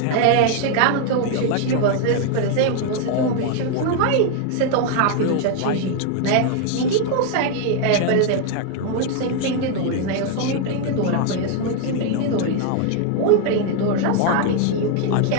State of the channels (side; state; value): both; different; correlation 0.00